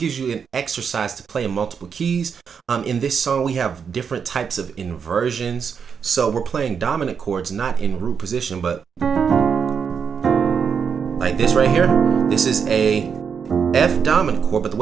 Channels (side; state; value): left; quieter; 6.6 dB